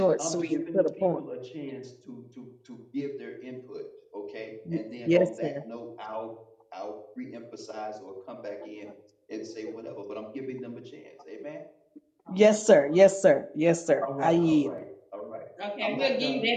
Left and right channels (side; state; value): both; identical; correlation 1.00